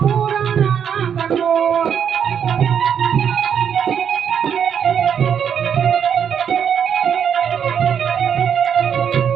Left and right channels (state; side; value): quieter; left; 8.0 dB